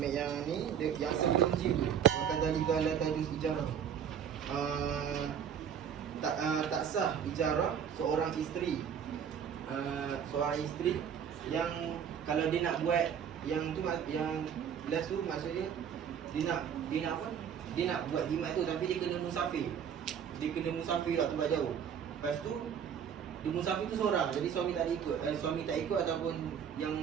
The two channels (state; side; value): quieter; left; 8.2 dB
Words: yang ni, yang sebelum G tu. Makan zalika la tajuz ijarah. Tak sah ijarah seorang isteri. Seorang isteri yang kalau dia nak buat yang tu, yang last tu maksudnya dia nak apa? Dia nak buat jimat tu tapi dia kena musafir. Dia kena musafir kat tempat jauh. Lepas tu dia musafir tu seorang. Jadi suami tak ikut. Suami tak ikut ataupun yang